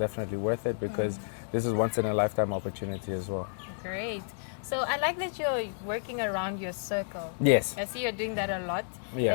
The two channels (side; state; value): right; silent; digital silence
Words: worth it because this is once in a lifetime opportunity as well. Great. So I like that you're working around your circle. Yes. I see you're doing that a lot, Yeah.